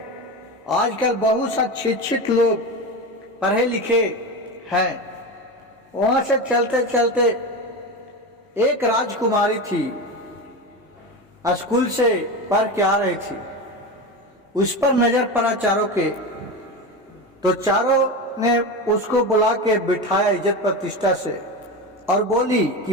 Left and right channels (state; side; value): normal; both; correlation 0.22